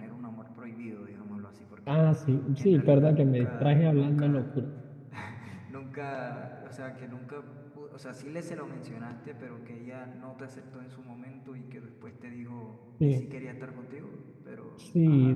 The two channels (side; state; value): both; identical; correlation 1.00